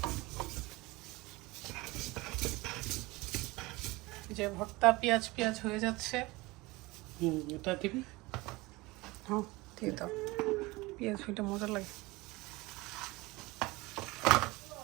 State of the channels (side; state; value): left; quieter; 22.2 dB